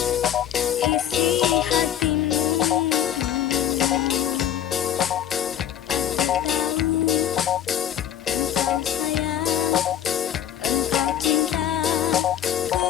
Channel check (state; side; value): quieter; right; 10.5 dB